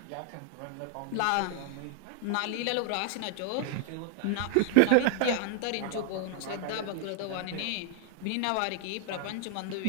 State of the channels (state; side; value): different; both; correlation 0.00